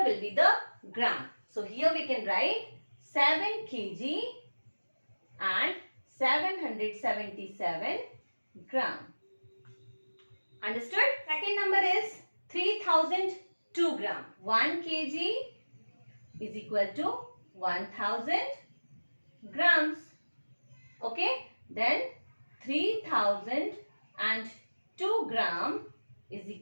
will be the gram. So here we can write 7 kg and 777 gram. Understood? Second number is 3002 gram. 1 kg is equal to 1000 grams. Okay, then 3002 gram is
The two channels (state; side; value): inverted; both; correlation -1.00